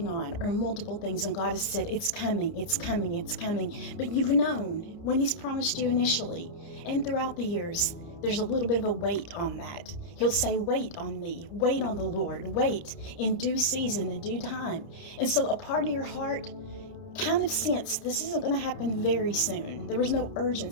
on, or multiple things, and God has said, it's coming, it's coming, it's coming, but you've known when He's promised you initially and throughout the years, there's a little bit of a wait on that. He'll say, wait on me, wait on the Lord, wait in due season, in due time. And so a part of your heart kind of sensed this isn't going to happen very soon. There was no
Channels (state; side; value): late; right; 30 ms